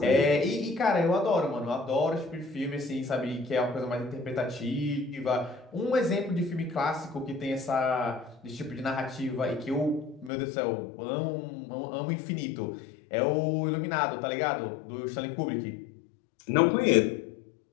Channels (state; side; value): drops out; right; at 10.3 s